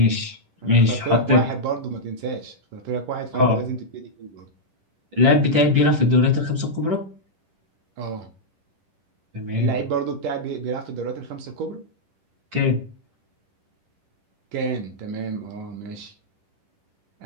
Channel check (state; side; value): late; left; 10 ms